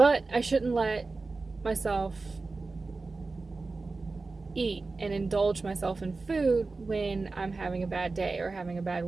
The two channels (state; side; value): quieter; left; 3.8 dB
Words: I shouldn't let myself eat and indulge myself in food when I'm having a bad day or having a bad